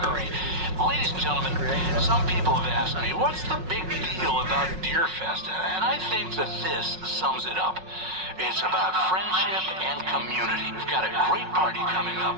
Ladies and gentlemen, some people have asked me, what's the big deal about Deer Fest? And I think that this sums it up. It's about friendship and community. We've got a great party coming up,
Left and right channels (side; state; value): left; late; 5.4 ms